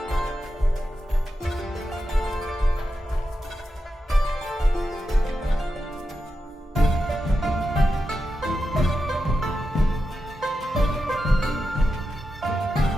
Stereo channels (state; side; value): normal; both; correlation 0.89